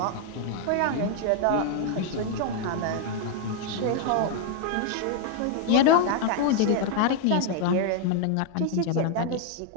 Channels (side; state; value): both; different; correlation 0.00